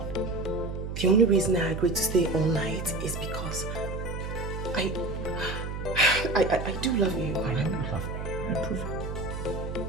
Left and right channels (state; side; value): noise; right; hum, 5 dB below the sound